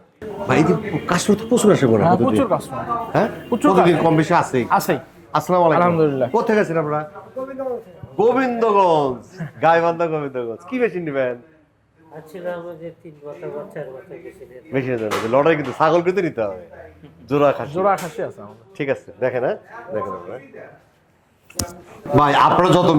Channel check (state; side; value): identical; both; correlation 1.00